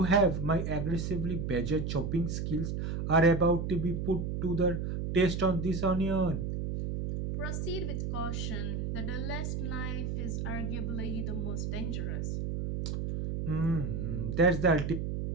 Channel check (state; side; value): noise; right; hum, 2 dB below the sound